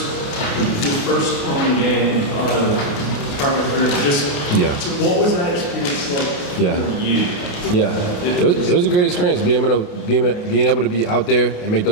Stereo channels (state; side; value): late; right; 28 ms